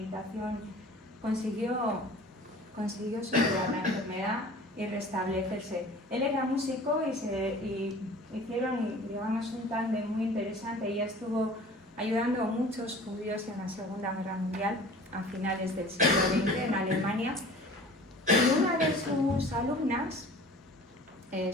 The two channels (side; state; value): both; normal; correlation 0.44